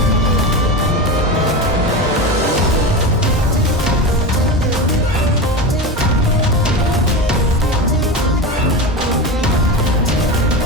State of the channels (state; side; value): normal; both; correlation 0.23